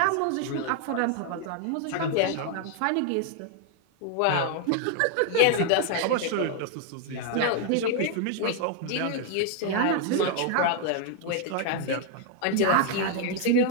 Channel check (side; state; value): both; different; correlation 0.00